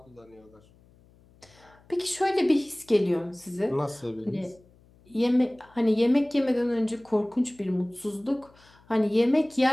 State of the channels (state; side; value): noise; left; hum, 29 dB below the sound